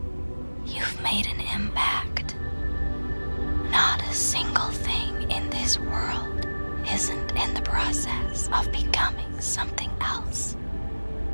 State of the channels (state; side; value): inverted; both; correlation -1.00